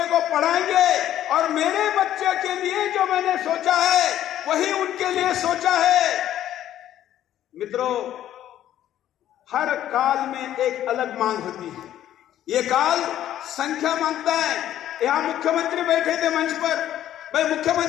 को पढ़ाएंगे और मेरे बच्चे के लिए जो मैंने सोचा है वही उनके लिए सोचा है। मित्रों, हर काल में एक अलग मांग होती है। ये काल संख्या मांगता है। यहां मुख्यमंत्री बैठे थे मंच पर, भाई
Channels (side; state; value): right; quieter; 11.9 dB